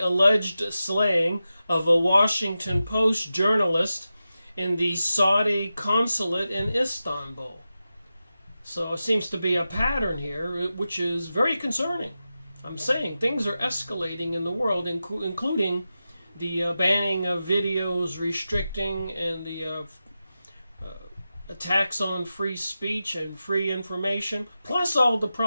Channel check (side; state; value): both; inverted; correlation -0.92